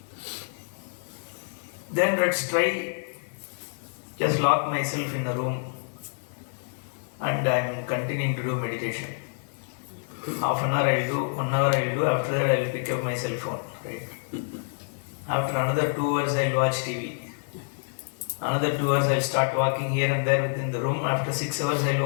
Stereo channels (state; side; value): silent; right; digital silence